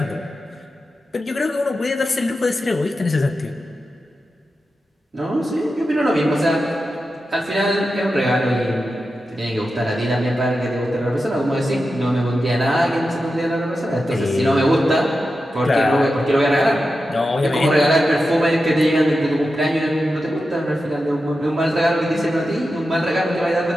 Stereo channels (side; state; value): both; normal; correlation 0.91